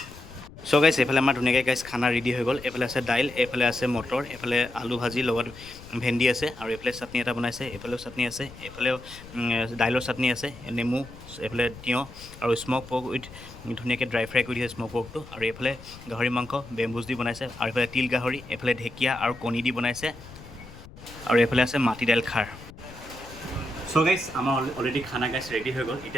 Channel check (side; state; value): left; noise; rumble, 17 dB below the sound